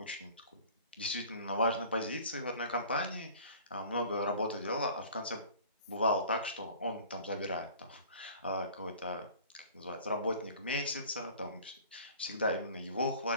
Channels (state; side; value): inverted; both; correlation -0.46